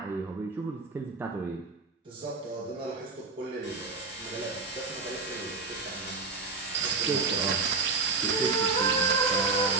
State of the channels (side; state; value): left; quieter; 4.2 dB